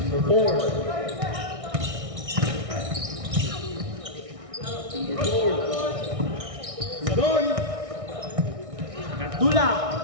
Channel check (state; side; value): late; left; 1.6 ms